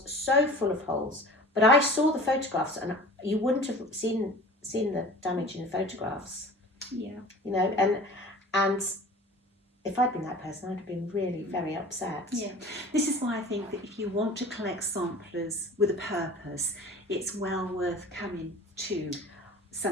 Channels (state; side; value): normal; both; correlation 0.41